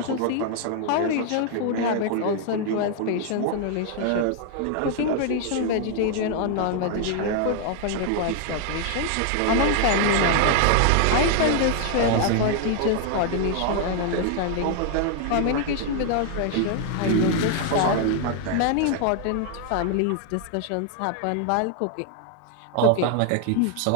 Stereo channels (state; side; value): different; both; correlation 0.00